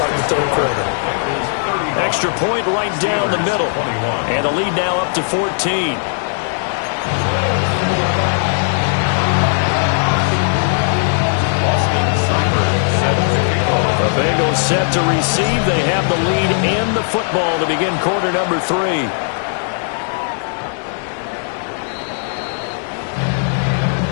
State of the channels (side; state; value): right; silent; digital silence